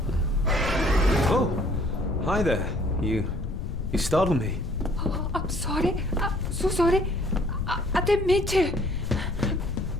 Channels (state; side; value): noise; left; rumble, 4 dB below the sound